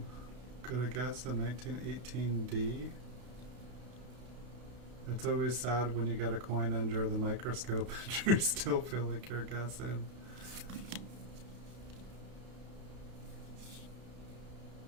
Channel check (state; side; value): late; left; 32 ms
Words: gonna guess a 1918D. It's always sad when you get a coin under the microscope and you still feel like you're guessing.